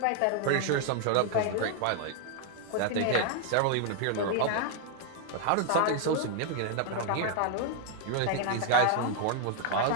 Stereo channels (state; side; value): different; both; correlation 0.00